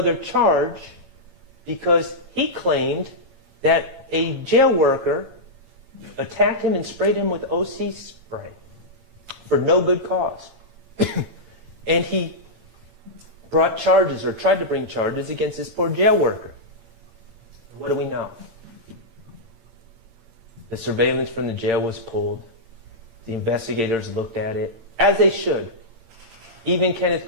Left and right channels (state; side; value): late; left; 8.8 ms